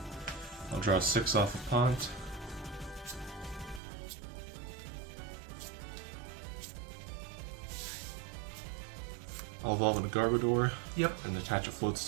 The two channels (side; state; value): left; drops out; at 3.8 s